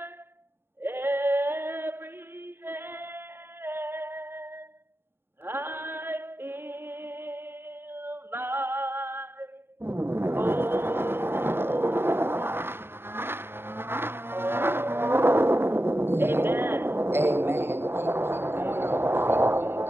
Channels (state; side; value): late; left; 0.11 ms